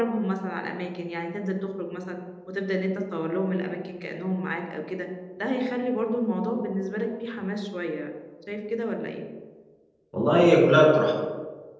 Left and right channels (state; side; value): identical; both; correlation 1.00